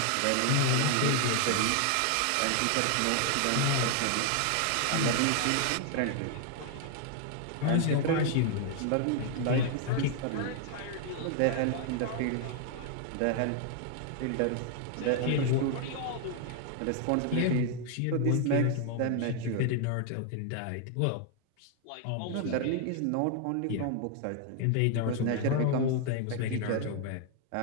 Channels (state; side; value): different; both; correlation 0.00